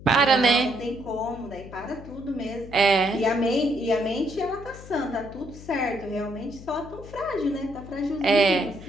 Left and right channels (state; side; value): noise; left; hum, 16 dB below the sound